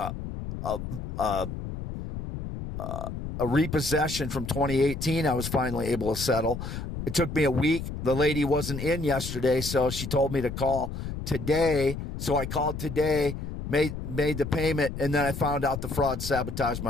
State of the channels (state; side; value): noise; left; rumble, 7 dB below the sound